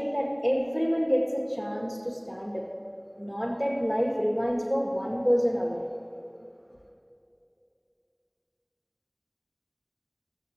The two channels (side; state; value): both; identical; correlation 1.00